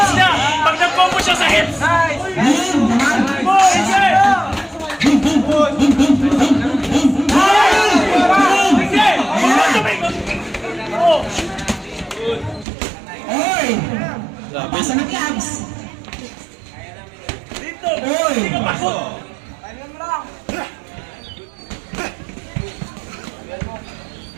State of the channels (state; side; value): drops out; left; at 12.7 s